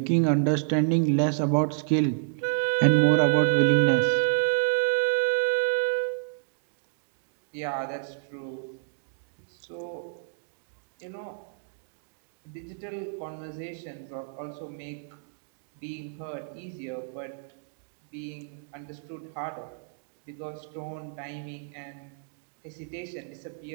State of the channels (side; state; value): left; silent; digital silence